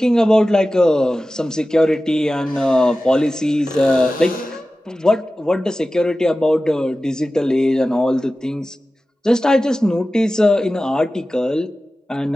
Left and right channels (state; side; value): normal; both; correlation 0.95